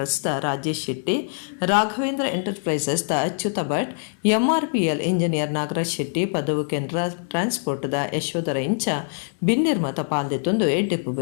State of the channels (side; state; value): right; silent; 63 dB below the other